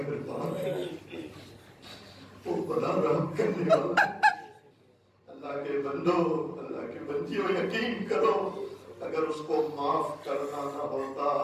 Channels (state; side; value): identical; both; correlation 1.00